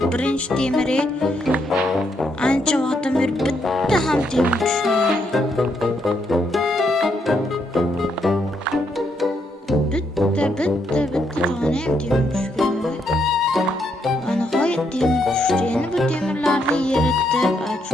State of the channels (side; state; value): both; normal; correlation 0.76